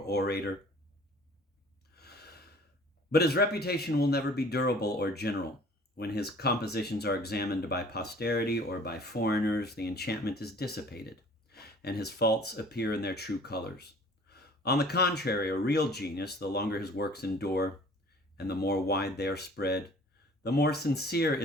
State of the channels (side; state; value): both; normal; correlation 0.50